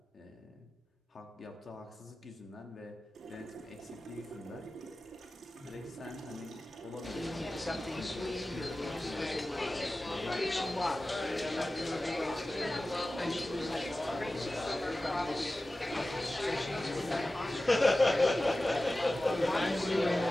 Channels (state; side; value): normal; both; correlation 0.96